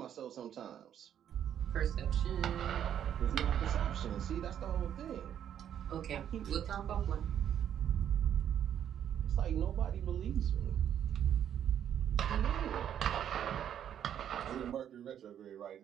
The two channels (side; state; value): left; quieter; 9.7 dB